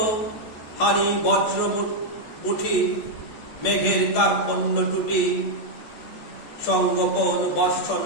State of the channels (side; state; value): right; late; 14 ms